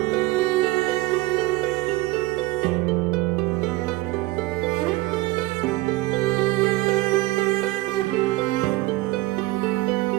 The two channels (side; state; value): left; quieter; 19.7 dB